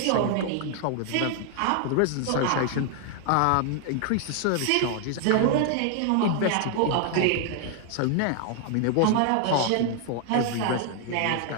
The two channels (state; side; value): different; both; correlation 0.00